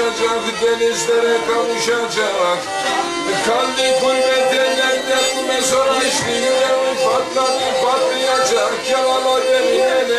denizlere kavuşacak. Kalbi gurbet ellerde mesora işte, yüreği patlayacak. Yalala beni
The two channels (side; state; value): both; identical; correlation 1.00